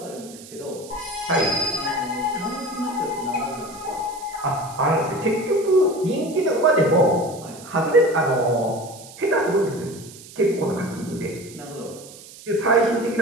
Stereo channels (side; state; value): right; noise; hiss, 18 dB below the sound